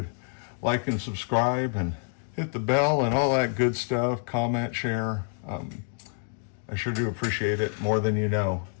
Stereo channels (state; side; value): silent; right; digital silence